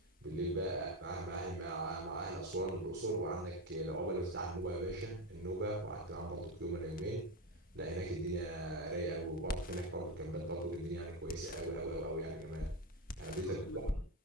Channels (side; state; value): both; normal; correlation 0.14